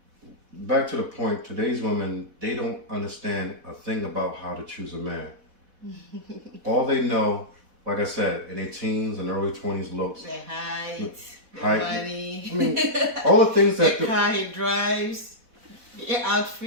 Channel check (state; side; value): late; left; 4.1 ms